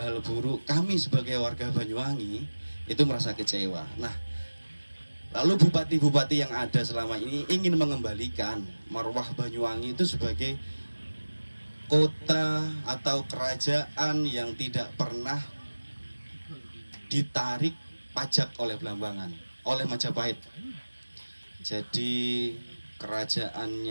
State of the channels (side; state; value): both; inverted; correlation -1.00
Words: buruk. Kami sebagai warga Banyuwangi itu merasa kecewa. Nah, lalu bupati-bupati yang ada selama ini ingin mengembalikan marwah Banyuwangi itu sebagai kota atau kerajaan yang tidak pernah ditarik pajak oleh Blambangan, oleh Majapahit. Jadi